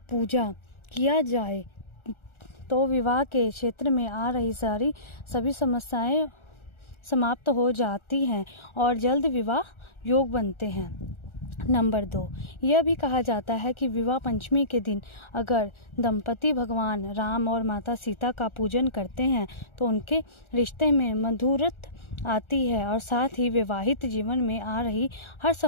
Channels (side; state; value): right; late; 1.4 ms